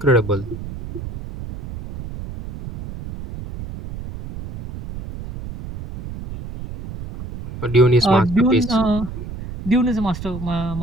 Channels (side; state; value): right; noise; rumble, 11 dB below the sound